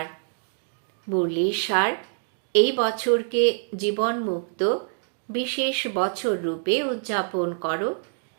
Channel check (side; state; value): left; silent; digital silence